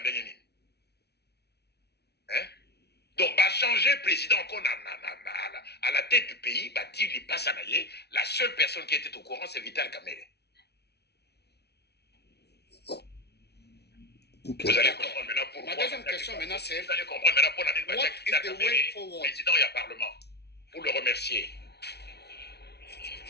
Donc, va changer président à la tête du pays, il passe à Naye. La seule personne qui était au courant, c'est Vital Kamere. Okay. Vous allez comprendre maintenant pourquoi. Ma deuxième question maintenant, c'est vous allez comprendre maintenant pour what is the way forward? Président et Parlement, pour le remercier.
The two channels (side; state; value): right; late; 0.49 ms